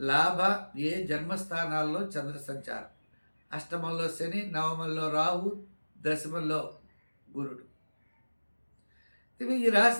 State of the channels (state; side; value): inverted; both; correlation -1.00